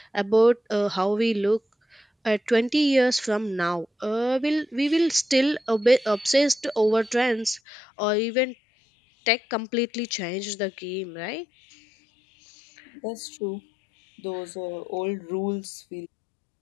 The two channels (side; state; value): right; drops out; at 7.6 s